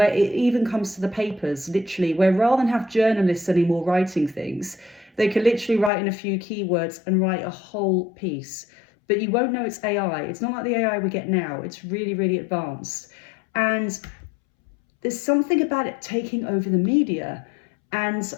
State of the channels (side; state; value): right; drops out; at 5.9 s